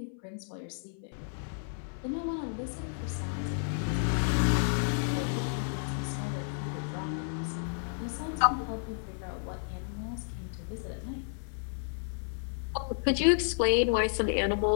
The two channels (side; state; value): right; silent; 57 dB below the other